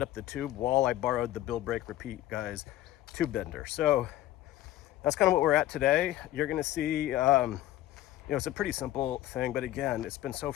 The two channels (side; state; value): right; quieter; 14.3 dB